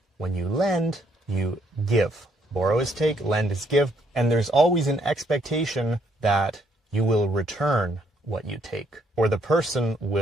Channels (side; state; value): both; normal; correlation 0.70